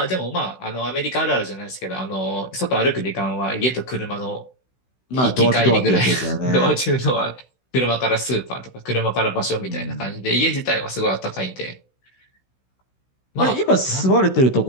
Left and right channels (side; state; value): right; late; 16 ms